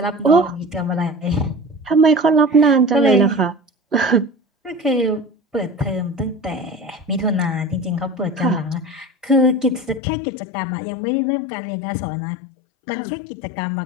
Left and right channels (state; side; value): drops out; right; at 10.0 s